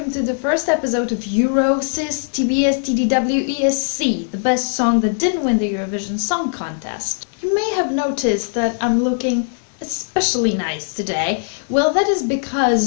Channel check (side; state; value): right; silent; digital silence